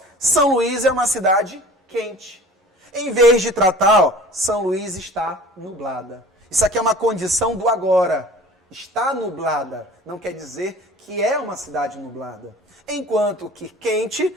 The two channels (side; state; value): both; normal; correlation 0.44